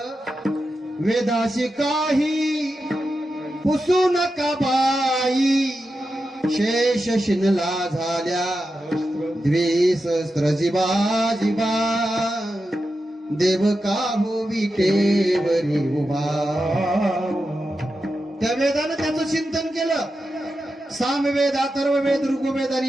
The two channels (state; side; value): normal; both; correlation 0.90